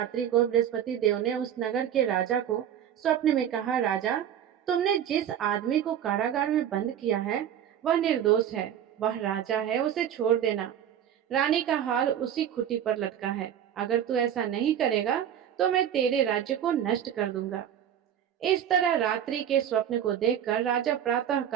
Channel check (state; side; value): quieter; left; 9.8 dB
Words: को बृहस्पति देव ने उस नगर के राजा को स्वप्न में कहा, राजा, तुमने जिस आदमी को कारागार में बंद किया है वह निर्दोष है, वह राजा है, उसे छोड़ देना। रानी का हाल उसी खुटी पर लटका है। अगर तू ऐसा नहीं करेगा तो मैं तेरे राज्य को नष्ट कर दूंगा। इस तरह रात्रि के स्वप्न को देखकर राजा प्रातः